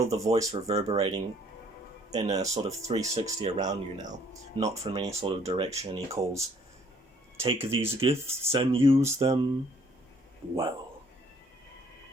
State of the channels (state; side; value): normal; both; correlation 0.61